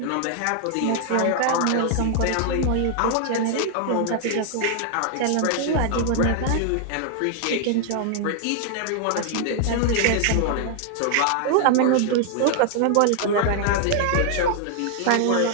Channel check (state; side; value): different; both; correlation 0.00